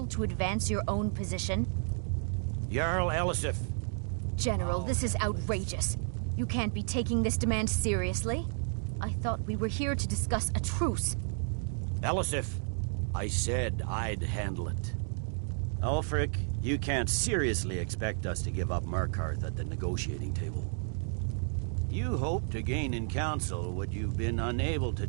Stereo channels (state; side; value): silent; left; 56 dB below the other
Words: to advance your own position? Jarl Elisif. General, this is outrageous. You can't be taking this demand seriously. I thought we were here to discuss a truce. Elisif, I said I'd handle it. Ulfric, you can't seriously expect us to give up Markarth at the negotiating table. You hope to gain in council what you've been unable to